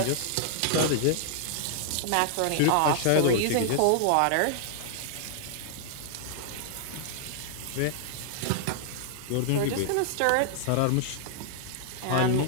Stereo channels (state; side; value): different; both; correlation -0.01